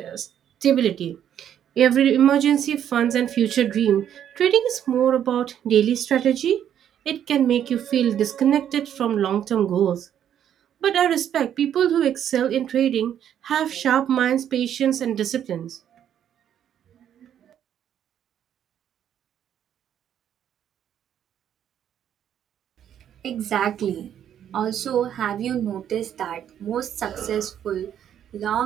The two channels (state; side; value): quieter; left; 9.8 dB